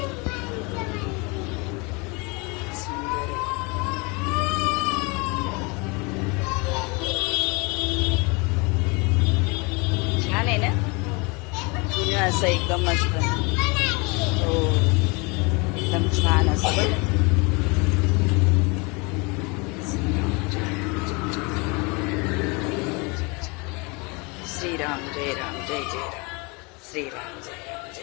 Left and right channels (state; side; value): quieter; right; 29.0 dB